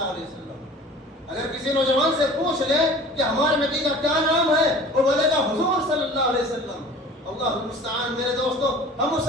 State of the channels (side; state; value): both; normal; correlation 0.43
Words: علیہ وسلم. اگر کسی نوجوان سے پوچھ لیں کہ ہمارے نبی کا کیا نام ہے، وہ بولے گا حضور صلی اللہ علیہ وسلم. اللہ المستعان. میرے دوستو، ہم